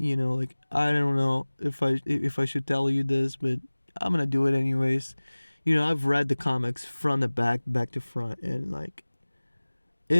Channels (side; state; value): both; inverted; correlation -1.00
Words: I don't know if I should tell you this, but I'm gonna do it anyways. I've read the comics front to back to front, and like,